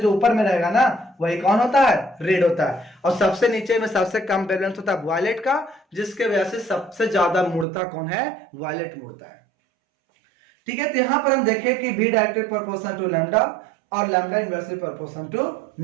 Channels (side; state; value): left; drops out; at 7.7 s